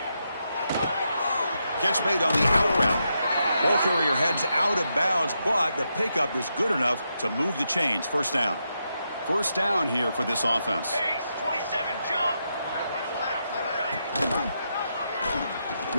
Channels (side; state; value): both; inverted; correlation -0.83